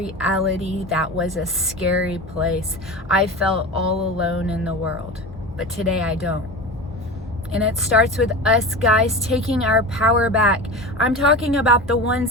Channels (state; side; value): normal; both; correlation 0.29